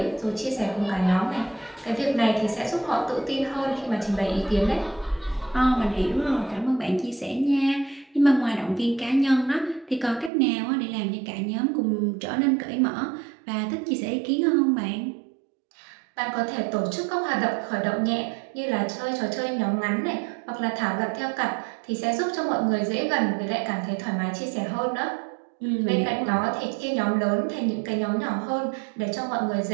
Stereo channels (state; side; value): drops out; left; at 10.3 s